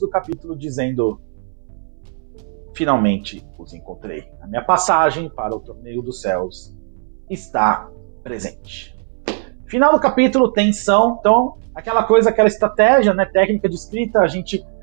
capítulo dizendo: finalmente os encontrei. A minha passagem para o Torneio dos Céus está presente. Final do capítulo, tensão. Então, aquela estratégia, né, técnica de escrita, a gente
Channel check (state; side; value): silent; left; 64 dB below the other